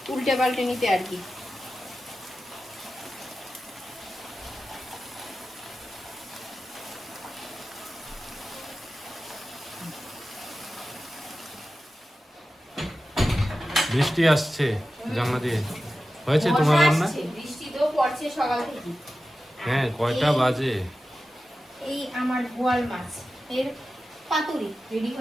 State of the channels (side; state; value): both; normal; correlation 0.93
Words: উল্টে পাল্টে নিতে আর কি। বৃষ্টি আসছে জানলা দিয়ে। হয়েছে তোমার মশা রান্না? আসছে, বৃষ্টি তো পড়ছে সকাল থেকে। হ্যাঁ, কয়টা বাজে? এই আমার বোয়াল মাছ এর পাতুরি রেডি